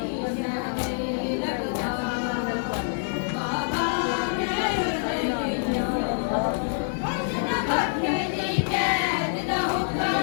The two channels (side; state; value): right; silent; digital silence